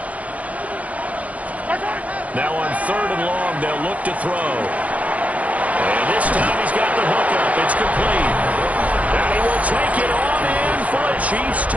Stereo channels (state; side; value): late; left; 0.069 ms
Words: Now on 3rd and long, they'll look to throw. And this time he's got the hookup. It's complete. And he will take it on in for a Chiefs